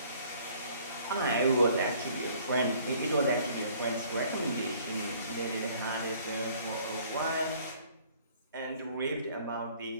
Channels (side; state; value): both; inverted; correlation -0.57